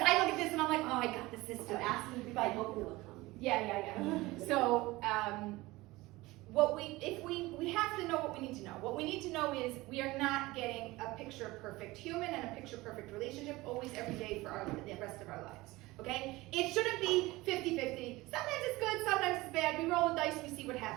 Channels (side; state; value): left; quieter; 20.1 dB